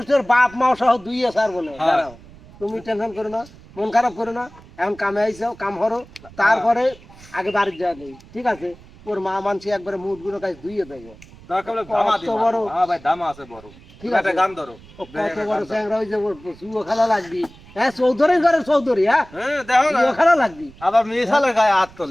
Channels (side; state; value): right; noise; rumble, 22 dB below the sound